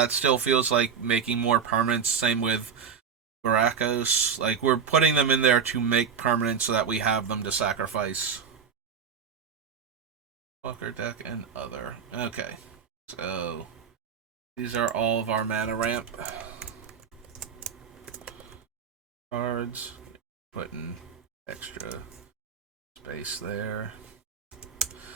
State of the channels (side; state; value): left; quieter; 6.9 dB